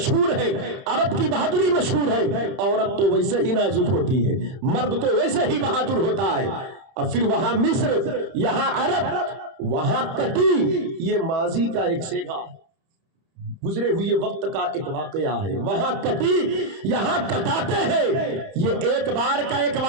ہے، عرب کی بہادری مشہور ہے۔ عورت تو ویسے ہی نازک ہوتی ہے، مرد تو ویسے ہی بہادر ہوتا ہے۔ اور پھر وہاں مصر یہاں عرب، وہاں کٹی، یہ ماضی کا ایک سیگا، گزرے ہوئے وقت کا ایک واقعہ ہے۔ وہاں کٹی یہاں کٹاتے ہیں، یہ ایک بار کا ایک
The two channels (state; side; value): late; left; 30 ms